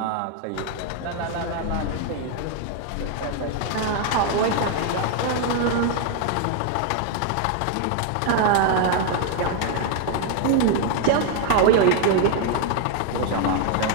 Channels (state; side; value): different; both; correlation 0.00